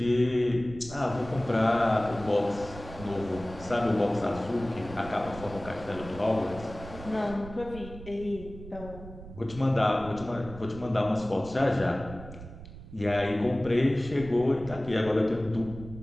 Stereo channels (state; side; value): noise; right; rumble, 14 dB below the sound